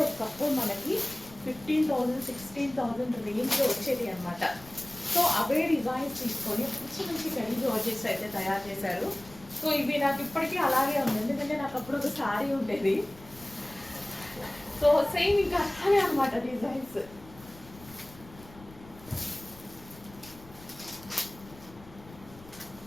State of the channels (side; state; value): left; noise; rumble, 21 dB below the sound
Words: ఒకప్పుడు మనకి 15,000 16,000 రేంజ్లో వచ్చేది అనమాట. సో అవే డిజైన్స్ తీసుకొని మంచి మంచి కడీ జార్జెట్స్ అయితే తయారు చేశారు. సో ఇవి నాకు ఇప్పటికీ అలాగే ఉంది, ఎందుకంటే నాకు అప్పుడు ఒక శారీ ఉండేది. సో సేమ్ ఇంకా అలాగే అనమాట డిజైన్స్.